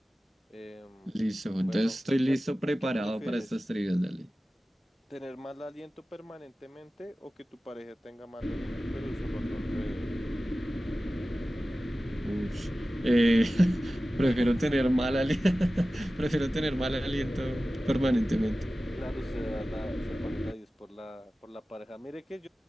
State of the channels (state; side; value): normal; both; correlation 0.96